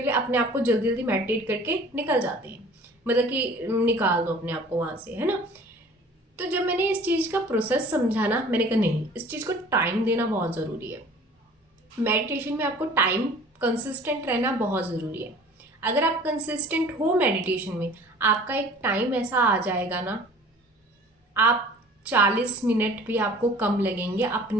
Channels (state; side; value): normal; both; correlation 0.47